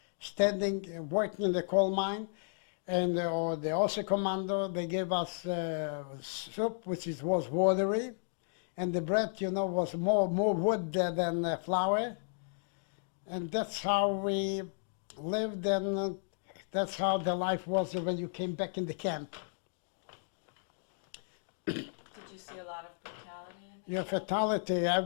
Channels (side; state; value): right; silent; digital silence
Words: standing, working in the coal mine. And the Außer Commando, they gave us soup, which was watery, and the bread, you know, was more wood than flour. And that's how we lived, and that's how the life was when you came back in the camp. Did you see a lot of brutality in the camp? Fatality,